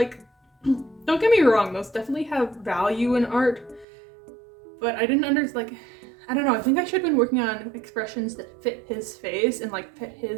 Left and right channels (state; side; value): drops out; left; at 3.9 s